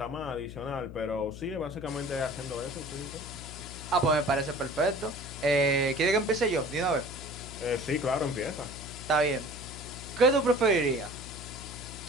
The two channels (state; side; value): noise; left; hum, 12 dB below the sound